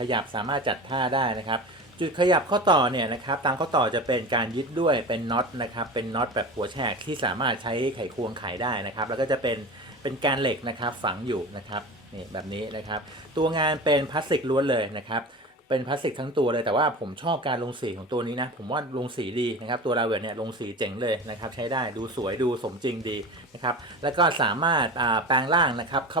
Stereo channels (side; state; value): both; normal; correlation 0.31